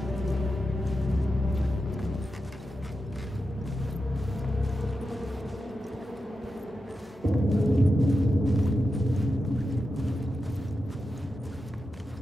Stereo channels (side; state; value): both; normal; correlation 0.90